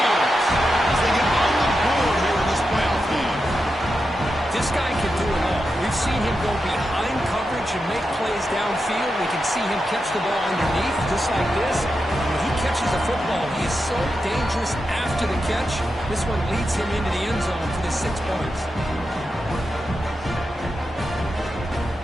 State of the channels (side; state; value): both; normal; correlation 0.88